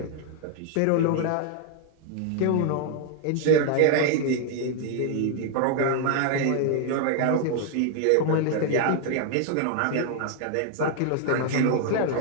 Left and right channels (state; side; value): different; both; correlation 0.00